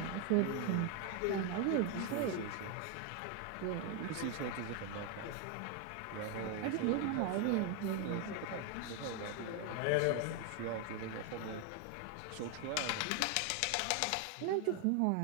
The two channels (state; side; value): different; both; correlation 0.01